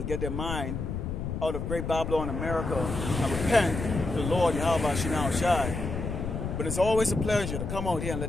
get their mind out of great Babylon, America, and repent to the Lord Yahweh Shinao Shai. But it's always a pleasure to come out here and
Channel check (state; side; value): noise; left; rumble, 4 dB below the sound